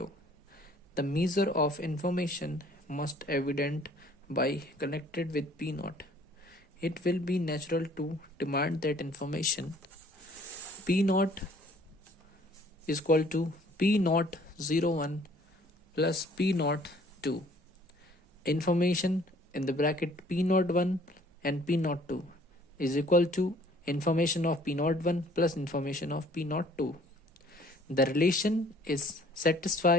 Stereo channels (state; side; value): normal; both; correlation 0.57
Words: The measure of information must evident by connected with P naught. It will be natural to demand that information P naught is equal to P naught 01 plus P naught 2. Information in the bracket P naught 1 and P naught 2 is equal to information of P naught 1 plus information of P naught 2. The relation is